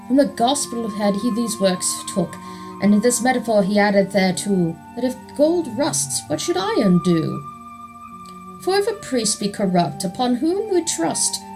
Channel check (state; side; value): identical; both; correlation 1.00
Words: From the gospel had he these works took, and in this metaphor he added thereto, that if gold rusts, what should iron do? For if a priest be corrupt, upon whom we trust,